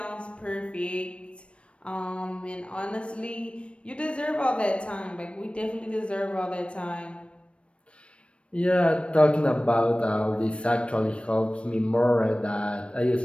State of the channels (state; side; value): late; right; 0.060 ms